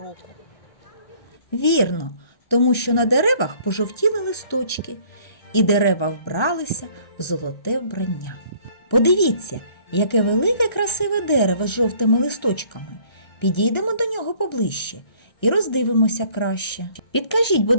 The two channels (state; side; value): late; right; 1.3 ms